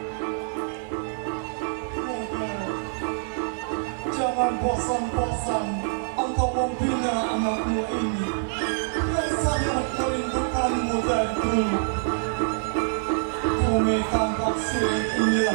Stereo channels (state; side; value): silent; left; 58 dB below the other